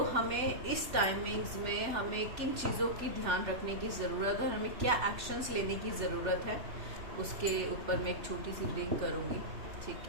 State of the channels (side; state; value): left; late; 3.4 ms